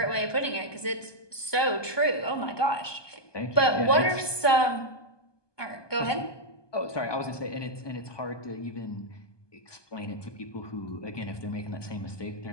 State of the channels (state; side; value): late; right; 1.2 ms